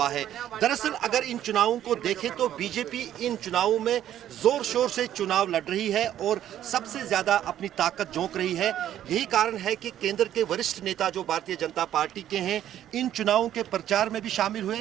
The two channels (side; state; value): left; quieter; 11.5 dB